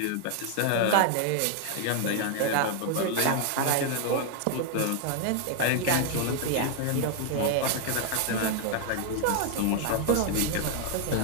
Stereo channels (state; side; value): different; both; correlation 0.00